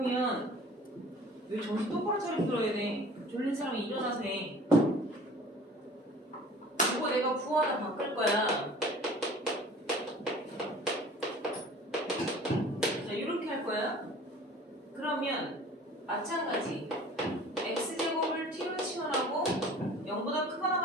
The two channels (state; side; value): normal; both; correlation 0.46